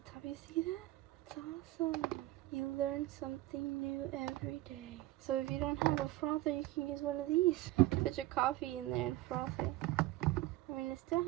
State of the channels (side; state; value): left; quieter; 16.8 dB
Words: You see that? It's awesome. You learn something new every day. So if you don't have a frother, you can use one of these. Put your coffee in there and froth it. I mean, it still